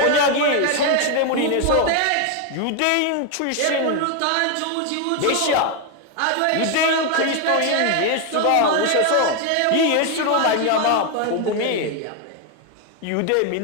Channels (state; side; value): different; both; correlation 0.01